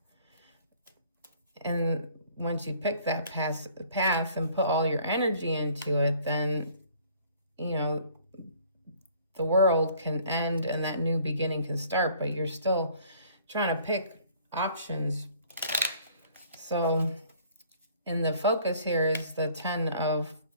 And once you pick that path and put all your energy into it, then, you know, the world can end and that new beginning can start, but you're still trying to pick options. So in the focus here is the 10 of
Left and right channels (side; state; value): both; inverted; correlation -0.56